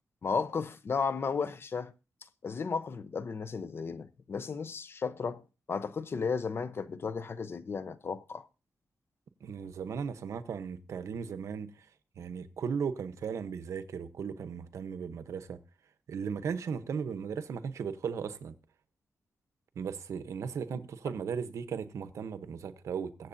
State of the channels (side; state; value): both; normal; correlation 0.72